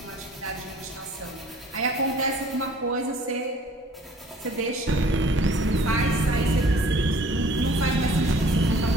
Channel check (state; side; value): normal; both; correlation 0.53